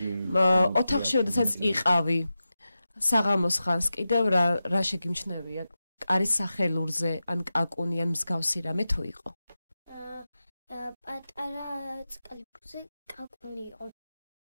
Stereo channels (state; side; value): inverted; both; correlation -0.92